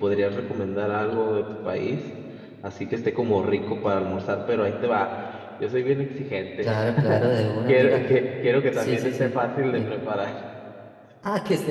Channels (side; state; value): both; identical; correlation 1.00